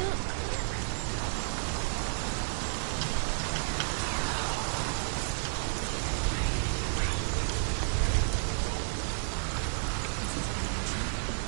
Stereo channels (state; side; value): silent; left; digital silence